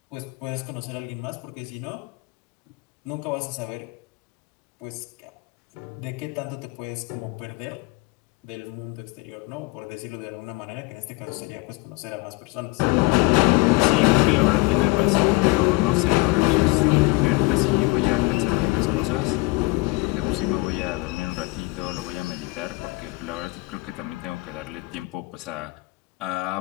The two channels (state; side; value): quieter; right; 23.8 dB